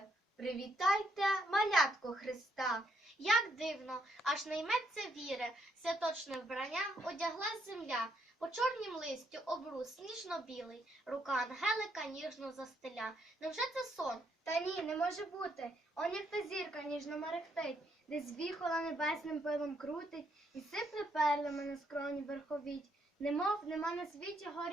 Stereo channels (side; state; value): both; normal; correlation 0.74